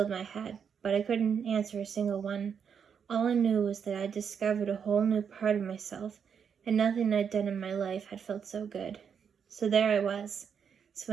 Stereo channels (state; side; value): quieter; left; 7.2 dB